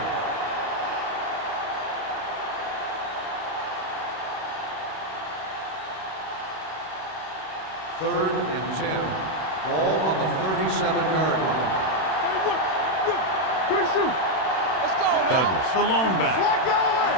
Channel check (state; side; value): late; right; 31 ms